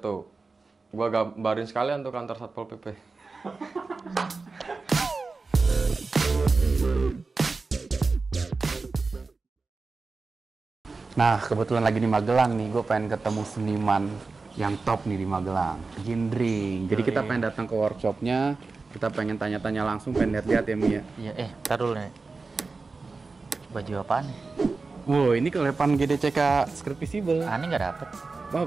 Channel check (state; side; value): quieter; left; 4.0 dB